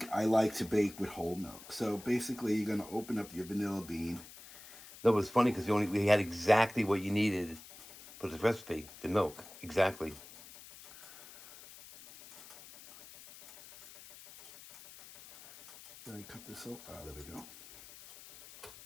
I like to bake with whole milk. So basically, you're going to open up your vanilla bean. No, it was funny because we had exactly what you needed for the recipe, the milk. Exactly. Did I cut this off? Ah, there we go.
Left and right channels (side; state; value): left; noise; hiss, 18 dB below the sound